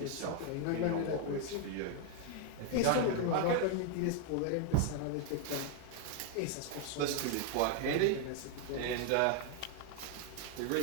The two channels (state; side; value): different; both; correlation 0.01